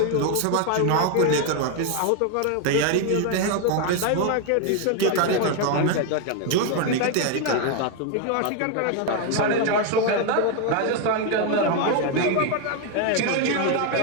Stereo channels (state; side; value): different; both; correlation 0.01